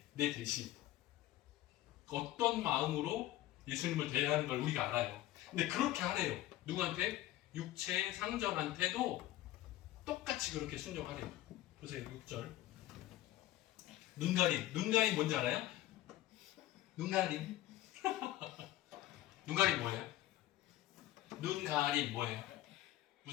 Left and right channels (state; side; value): quieter; right; 15.0 dB